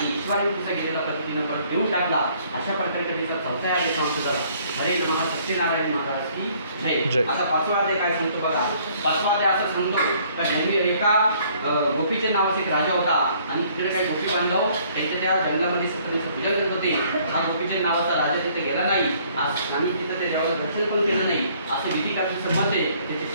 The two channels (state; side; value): inverted; both; correlation -0.61